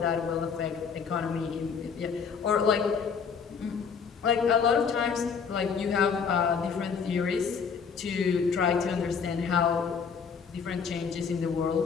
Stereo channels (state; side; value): quieter; right; 6.2 dB